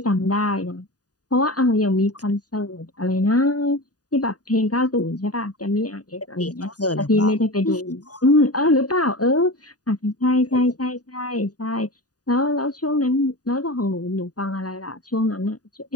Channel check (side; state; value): right; late; 0.68 ms